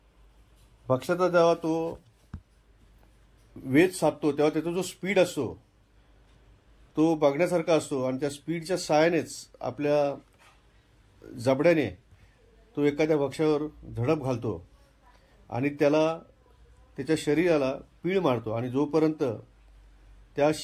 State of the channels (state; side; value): identical; both; correlation 1.00